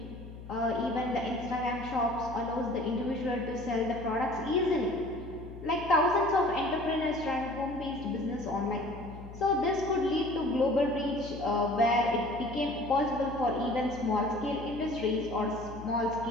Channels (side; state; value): left; noise; hum, 14 dB below the sound